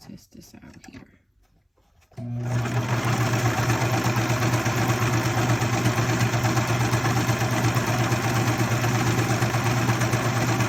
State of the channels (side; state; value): both; identical; correlation 1.00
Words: this out here.